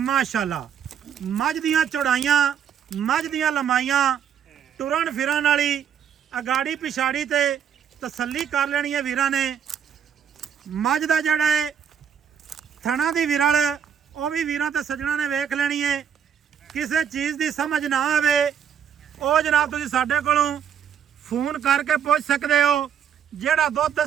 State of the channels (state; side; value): quieter; left; 8.3 dB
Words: ਮੱਝ ਦੀਆਂ ਚੌੜਾਈਆਂ, ਮੱਝ ਦੀਆਂ ਲੰਮਾਈਆਂ, ਟੁਰਨ ਫਿਰਨ ਵਾਲੀ, ਅਗਾੜੀ ਪਿਛਾੜੀ ਤੇ ਤਸੱਲੀ ਕਰ ਲੈਣੀ ਹੈ ਵੀਰਾਂ ਨੇ। ਮੱਝ ਦਾ ਜਿਹੜਾ ਹੈ ਥਣਾ ਦੀ ਵਿਰਲ, ਉਹ ਵੀ ਵੀਰਾਂ ਤੇ ਸੱਜਣਾ ਨੇ ਵੇਖ ਲੈਣੀ ਹੈ। ਕਿਸੇ ਚੀਜ਼ ਦੀ ਸਮਝ ਨਾ ਆਵੇ ਉਹ ਜਨਾਬ ਤੁਸੀਂ ਸਾਡੇ ਕੋਲੋਂ ਫੋਨ ਕਰਕੇ ਪੁੱਛ ਸਕਦੇ ਹੋ। ਜਿਹੜਾ ਦੁੱਧ